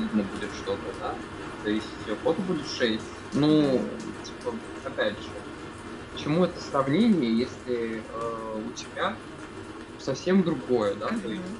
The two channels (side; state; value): both; identical; correlation 1.00